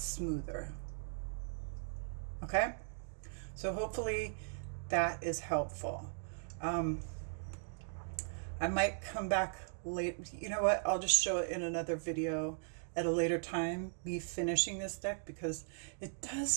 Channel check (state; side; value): silent; left; digital silence